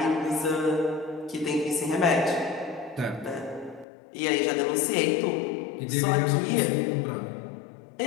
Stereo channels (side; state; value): right; drops out; at 3.9 s